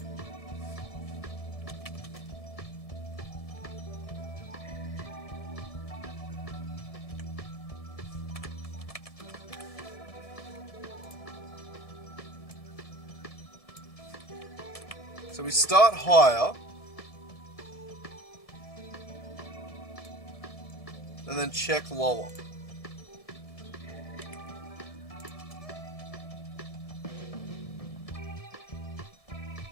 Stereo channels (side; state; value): right; late; 1.7 ms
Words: So we start higher. And then check lower.